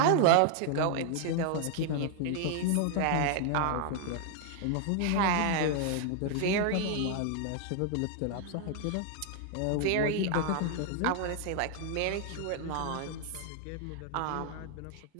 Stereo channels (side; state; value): both; different; correlation 0.00